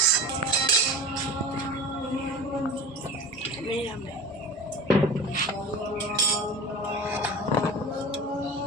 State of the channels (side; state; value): both; normal; correlation 0.34